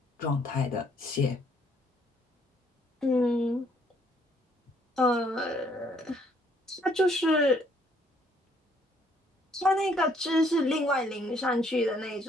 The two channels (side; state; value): both; normal; correlation 0.66